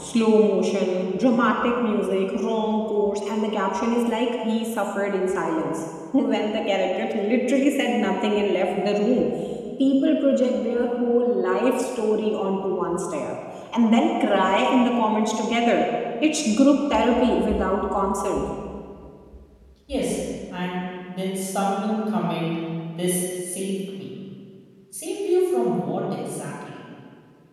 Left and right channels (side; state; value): both; identical; correlation 1.00